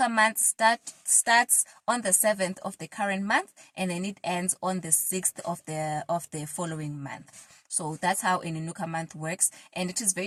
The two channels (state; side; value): identical; both; correlation 1.00